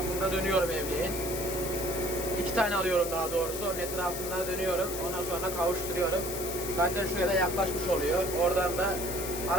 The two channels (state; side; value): noise; left; hiss, 6 dB below the sound